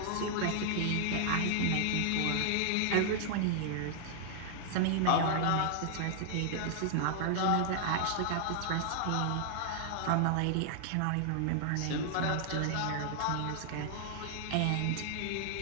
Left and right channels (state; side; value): different; both; correlation -0.01